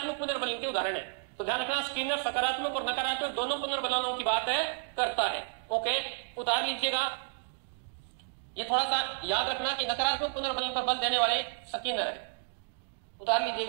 पुनर्बलन के उदाहरण है। तो ध्यान रखना, स्किनर सकारात्मक और नकारात्मक दोनों पुनर्बलनों की बात है करता है। ओके, उतार लीजिएगा। ये थोड़ा सा याद रखना कि नकारात्मक पुनर्बलन पर बल देने वाले स्किनर है, उतार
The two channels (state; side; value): silent; left; digital silence